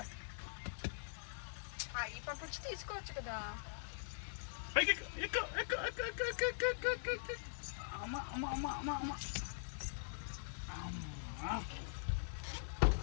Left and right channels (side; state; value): right; silent; digital silence